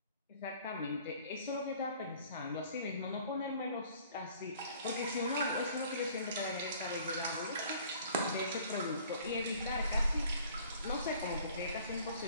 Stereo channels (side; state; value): both; inverted; correlation -0.53